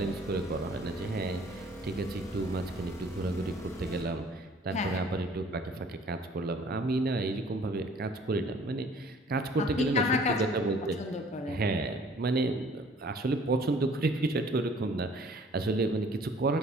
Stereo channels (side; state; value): both; normal; correlation 0.54